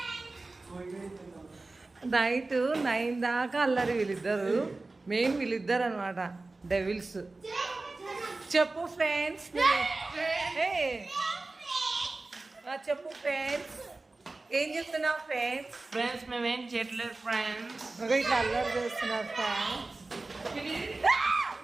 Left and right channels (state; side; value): quieter; left; 3.3 dB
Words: 9 దాకా అల్లరి. వీళ్ళిద్దరు మెయిన్ వీళ్ళిద్దరు అనమాట, డెవిల్స్. చెప్పు ఫ్రెండ్స్, చెప్పు ఫ్రెండ్స్, ఏం చెప్తున్నావు ఫ్రెండ్స్? ఫ్రెండ్స్ మేమేం చేయట్లేదు ఫ్రెండ్స్. ఇట్లా అల్లరి చేస్తున్నారు ఫ్రెండ్స్.